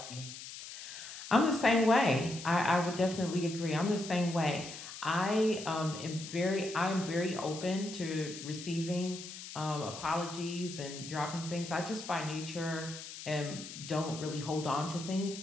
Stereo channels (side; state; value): left; noise; hiss, 11 dB below the sound